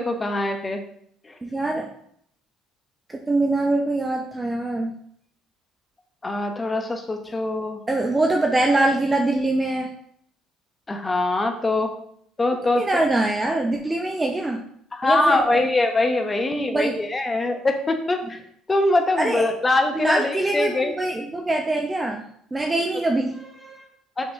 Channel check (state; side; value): normal; both; correlation 0.85